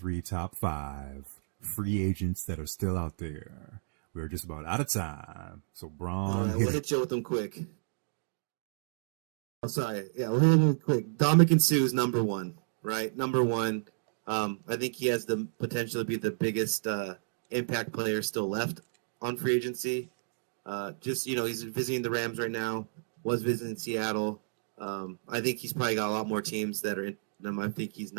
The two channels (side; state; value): left; silent; digital silence